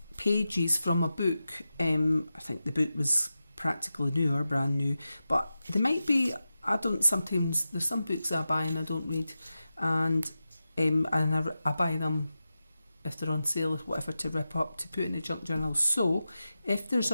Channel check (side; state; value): both; inverted; correlation -0.92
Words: pages from a book, I think the book was practically new or brand new, but they might be, there's some books I buy and I don't read, and I buy them if they're on sale or whatever to rip up to put in the junk journal. So if there's